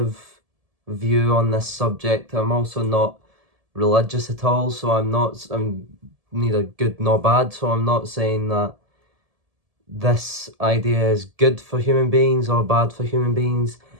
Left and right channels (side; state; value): left; late; 1.7 ms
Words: view on this subject. I'm also not religious at all, so I'm neither good nor bad, so I'm not saying that this idea is good for human beings or bad for human beings,